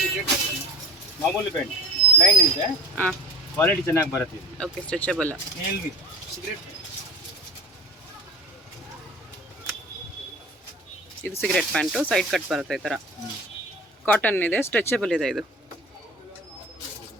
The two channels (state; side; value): normal; both; correlation 0.33